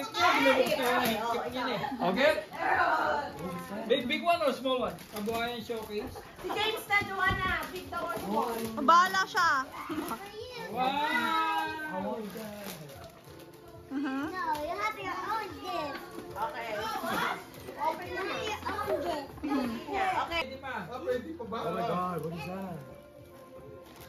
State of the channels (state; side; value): identical; both; correlation 1.00